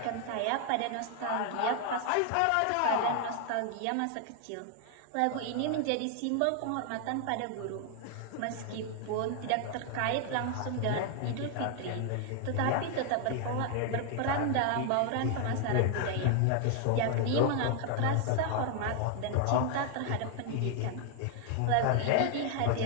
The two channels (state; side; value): different; both; correlation 0.00